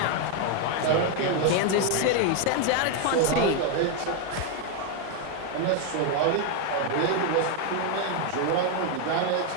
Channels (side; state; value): both; different; correlation 0.01